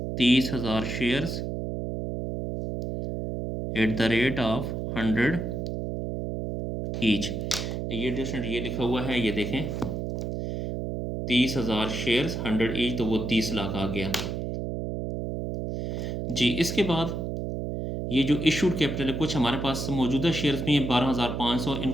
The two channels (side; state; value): right; noise; hum, 3 dB below the sound